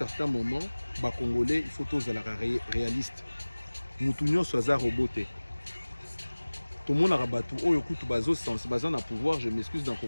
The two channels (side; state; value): both; inverted; correlation -1.00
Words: moment, les Congolais, il faut tous la réaliste. Moutounio soit roboté. Tout le monde a rabattu. Oh, écoute, bazo sens, bazan a pouvoir. Je m'excuse dans le